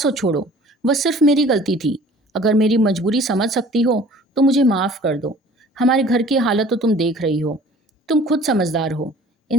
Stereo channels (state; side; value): normal; both; correlation 0.49